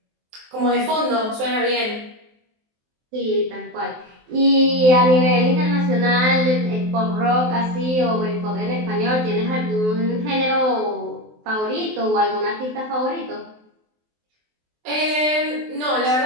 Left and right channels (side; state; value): left; late; 23 ms